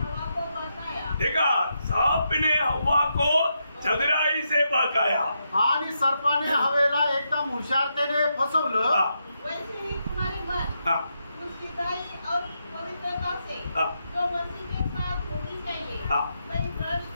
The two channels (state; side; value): inverted; both; correlation -0.83